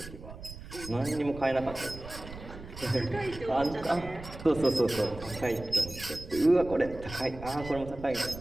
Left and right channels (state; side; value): noise; right; rumble, 13 dB below the sound